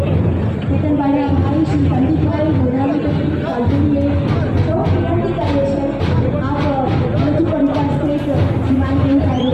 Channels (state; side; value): identical; both; correlation 1.00